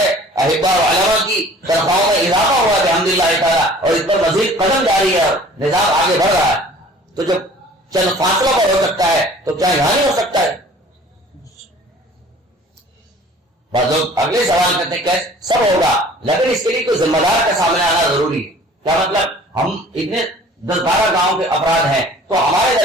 احبا و علماء کی تنخواہوں میں اضافہ ہوا ہے الحمدللہ تعالیٰ, اور اس پر مزید قدم جاری ہے اور نظام آگے بڑھ رہا ہے. تو جب چند فاصلوں پر ہو سکتا ہے تو کیا یہاں نہیں ہو سکتا ہے؟ بعض لوگ اگلے سوال کرتے ہیں کیسے سب ہوگا, لیکن اس کے لیے کوئی ذمہ دار کا سامنے آنا ضروری ہے. کیا مطلب؟ ہم اتنے 10-12 گاؤں کے افراد ہیں, تو ہمارے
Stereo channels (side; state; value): both; normal; correlation 0.49